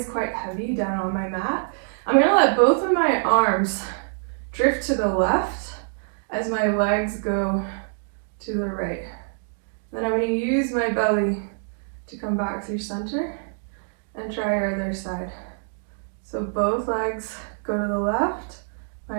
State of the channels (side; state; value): left; silent; digital silence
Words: quite heavy down on my mat. I'm gonna let both of my arms drift to the left as my legs go to the right. Then I'm gonna use my belly to come back through center and try your other side. So both legs go to the left, my